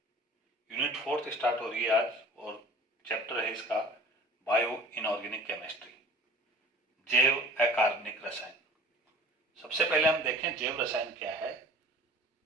यूनिट 4 स्टार्ट हो रही है आज और चैप्टर है इसका बायो इनऑर्गेनिक केमिस्ट्री, जैव अकार्बनिक रसायन। सबसे पहले हम देखें जैव रसायन क्या है।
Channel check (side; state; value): both; normal; correlation 0.47